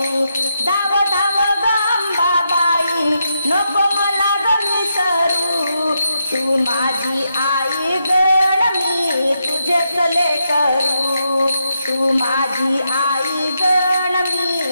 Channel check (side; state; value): both; inverted; correlation -0.83